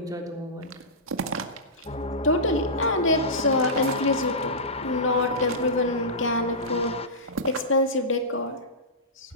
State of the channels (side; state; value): both; normal; correlation -0.17